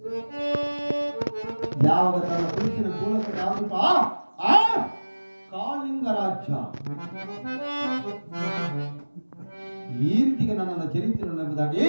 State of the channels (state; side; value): inverted; both; correlation -1.00